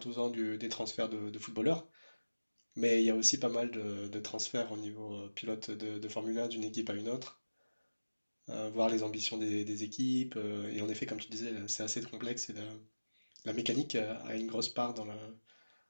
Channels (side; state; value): both; inverted; correlation -1.00